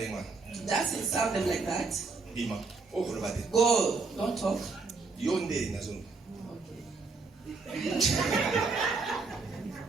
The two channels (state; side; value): quieter; left; 4.2 dB